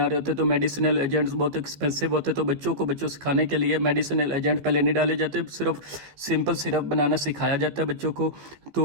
रहे होते तो मेडिसिनल एजेंट्स बहुत एक्सपेंसिव होते, तो बच्चों सिखाने के लिए मेडिसिनल एजेंट पहले नहीं डाले जाते, सिर्फ सिंपल सिरप बनाना सिखाया जाता है बच्चों को।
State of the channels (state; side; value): late; left; 14 ms